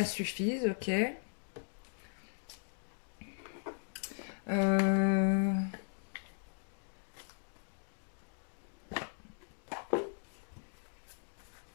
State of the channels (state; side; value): silent; right; digital silence